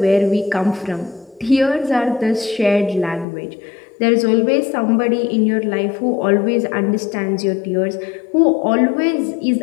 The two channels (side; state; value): right; drops out; at 3.2 s